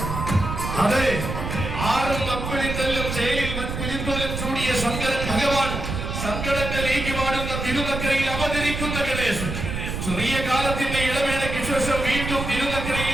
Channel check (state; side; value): noise; right; rumble, 4 dB below the sound